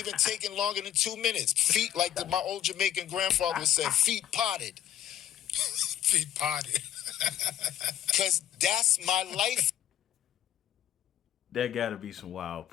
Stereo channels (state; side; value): quieter; right; 11.1 dB